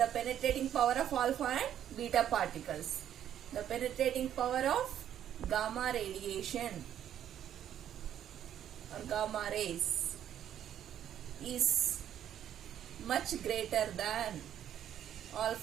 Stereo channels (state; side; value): quieter; left; 10.4 dB